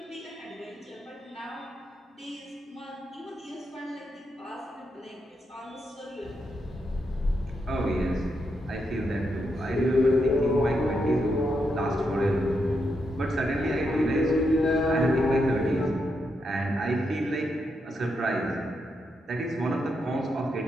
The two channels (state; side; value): normal; both; correlation 0.82